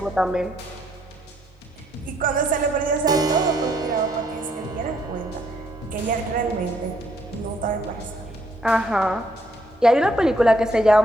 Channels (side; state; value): both; normal; correlation 0.70